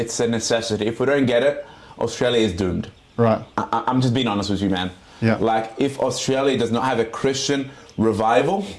a necessity. If we don't get it, Australia is doomed. Right. I'm just being honest with you, man. Yeah. Like, if Australia does not have a Christian revival,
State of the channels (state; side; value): identical; both; correlation 1.00